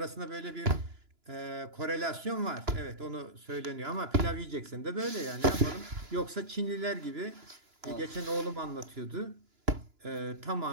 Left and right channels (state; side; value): late; left; 2.9 ms